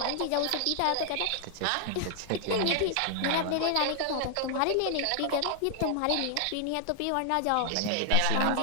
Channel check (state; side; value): different; both; correlation 0.00